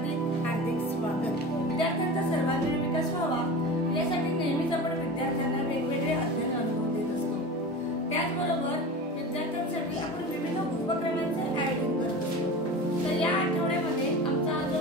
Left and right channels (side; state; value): both; normal; correlation 0.31